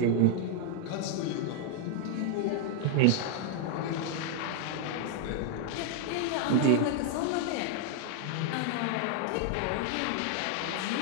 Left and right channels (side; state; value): both; different; correlation 0.00